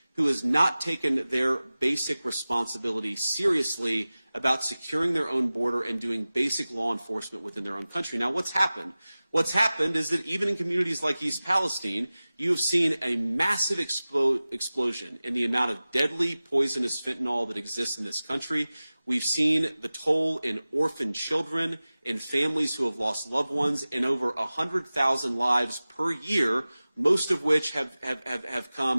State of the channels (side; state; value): both; inverted; correlation -0.97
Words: who has not taken their basic responsibility seriously about securing their own border and doing basic law enforcement within their own country. Now, what's happened? What's happened is that even in communities like East Palestine, you have seen a massive explosion in the amount of deadly, poisonous fentanyl that exists in this country. We've seen the toll in orphan children, in families who have lost loved ones, in over 100,000 lives per year, most of which have